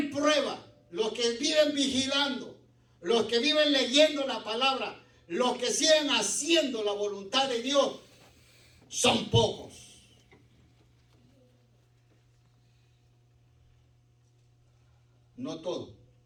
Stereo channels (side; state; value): both; identical; correlation 1.00